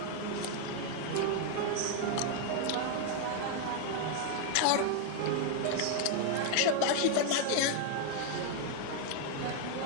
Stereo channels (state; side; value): different; both; correlation 0.00